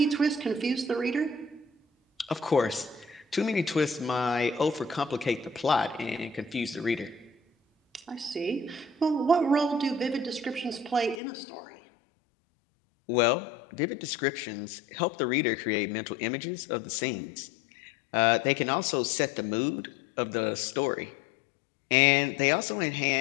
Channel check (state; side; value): drops out; right; at 11.2 s